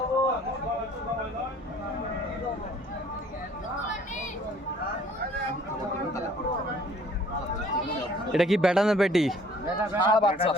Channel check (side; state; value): both; normal; correlation 0.56